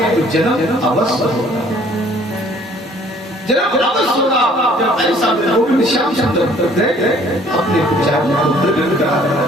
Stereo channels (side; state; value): both; normal; correlation 0.58